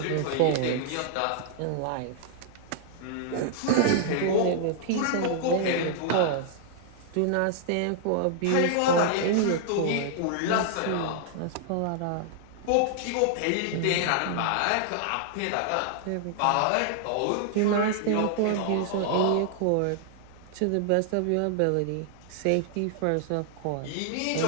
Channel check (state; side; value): different; both; correlation -0.01